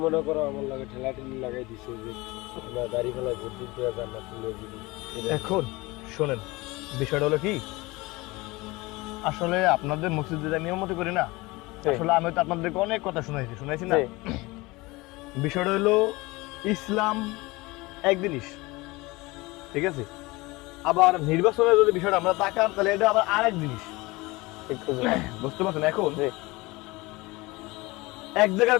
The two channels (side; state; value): right; quieter; 22.5 dB